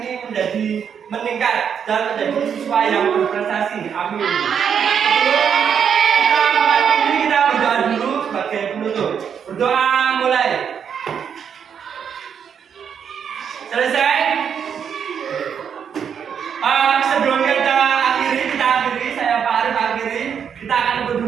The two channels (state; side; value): quieter; left; 7.6 dB